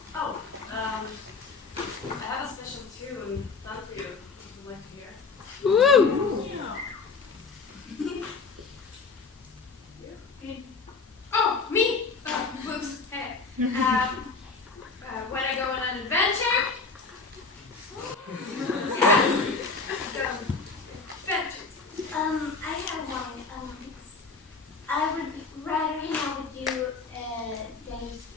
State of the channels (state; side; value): quieter; right; 4.5 dB